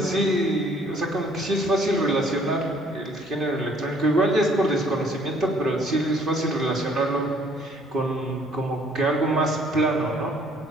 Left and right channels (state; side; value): normal; both; correlation 0.60